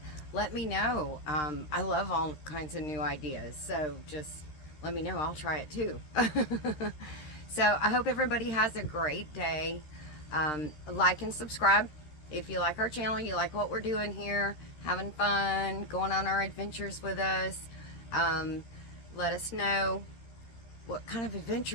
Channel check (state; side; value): late; right; 13 ms